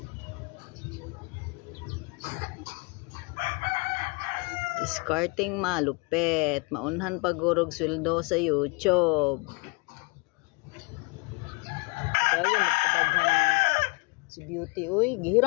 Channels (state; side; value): quieter; right; 29.0 dB